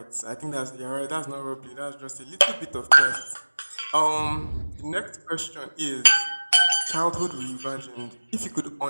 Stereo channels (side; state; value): both; inverted; correlation -1.00